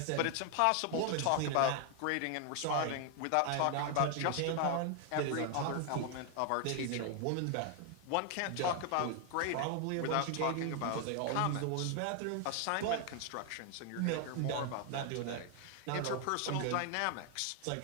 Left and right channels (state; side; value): different; both; correlation 0.00